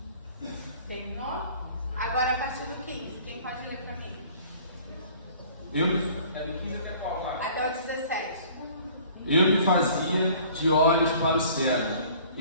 Terminou? Agora a partir do 15, quem pode ler para mim? Até o 17. Eu me fazia de olhos para o cego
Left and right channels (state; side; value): inverted; both; correlation -0.51